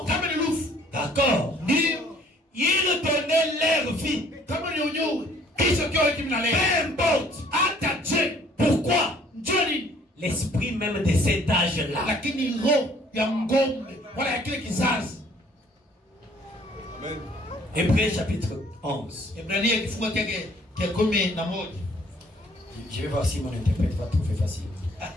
d'accord, ils donnaient leur vie. Peu importe. Pourquoi? L'esprit même de cet âge-là. Hébreux chapitre 11. Ebrania kifungo chake cha 11. Je vais voir si mon interprète va trouver facile.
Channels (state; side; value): normal; both; correlation 0.58